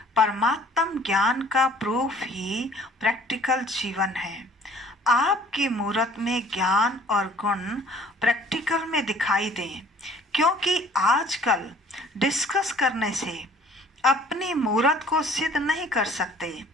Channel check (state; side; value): normal; both; correlation 0.54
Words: परमात्म ज्ञान का प्रूफ ही प्रैक्टिकल जीवन है। आपकी मूरत में ज्ञान और गुण प्रैक्टिकल में दिखाई दें, क्योंकि आजकल डिस्कस करने से अपनी मूरत को सिद्ध नहीं कर सकते,